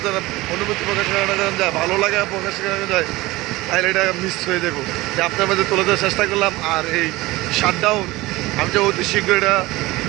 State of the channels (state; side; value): quieter; left; 20.0 dB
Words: যায়, অনুভূতি প্রকাশ করানো যায়, ভালো লাগা প্রকাশ করানো যায়, তাহলে এটা মিস হয়ে যাবো। যে আপনার মাঝে তুলে দেওয়ার চেষ্টা করলাম। আর এই শাটডাউন আমি যে অতি শীঘ্র এটা